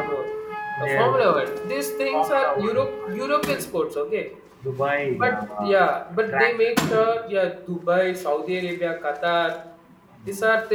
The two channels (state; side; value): identical; both; correlation 1.00